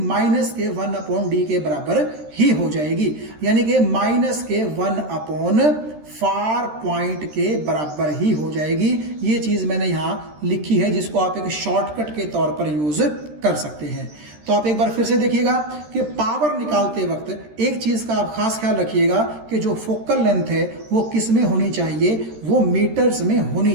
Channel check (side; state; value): left; late; 13 ms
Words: माइनस के 1/d के बराबर ही हो जाएगी, यानी कि माइनस के 1/ फार पॉइंट के बराबर ही हो जाएगी। ये चीज मैंने यहां लिखी है जिसको आप एक शॉर्टकट के तौर पर यूज कर सकते हैं। तो आप एक बार फिर से देखिएगा कि पावर निकालते वक्त एक चीज का आप खास ख्याल रखिएगा कि जो फोकल लेंथ है वो किस में होनी चाहिए, वो मीटर्स में होनी